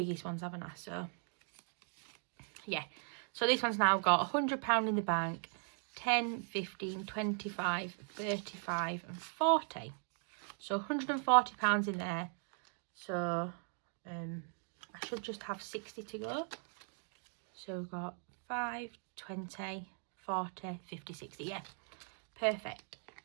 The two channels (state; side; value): silent; left; 52 dB below the other